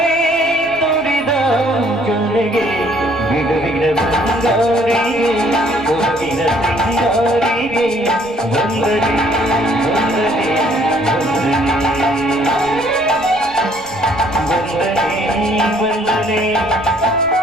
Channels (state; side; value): noise; right; rumble, 23 dB below the sound